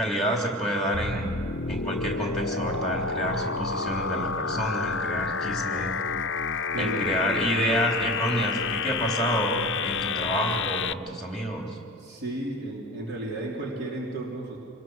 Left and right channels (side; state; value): both; normal; correlation 0.32